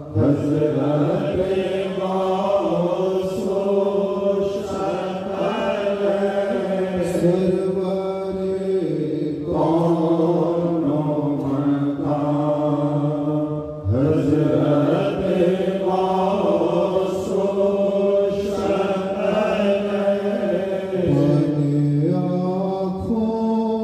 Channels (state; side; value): identical; both; correlation 1.00